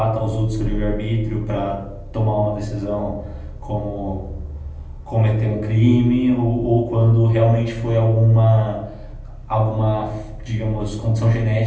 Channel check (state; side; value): identical; both; correlation 1.00